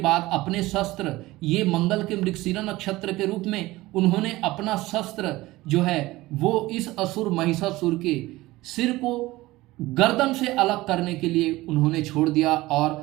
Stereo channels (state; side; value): quieter; left; 18.8 dB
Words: अपने शस्त्र, ये मंगल के मृगशिरा नक्षत्र के रूप में उन्होंने अपना शस्त्र जो है वो इस असुर महिषासुर के सिर को गर्दन से अलग करने के लिए उन्होंने छोड़ दिया